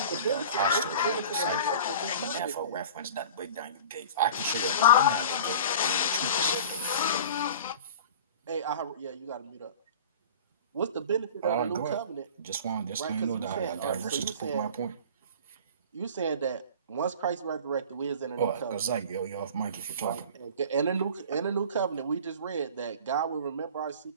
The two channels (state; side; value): inverted; both; correlation -0.40